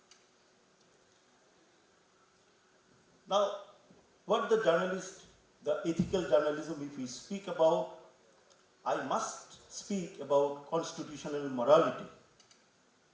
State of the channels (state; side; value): identical; both; correlation 1.00